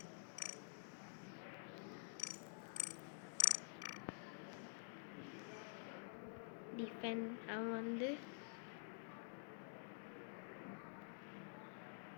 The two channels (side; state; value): right; silent; digital silence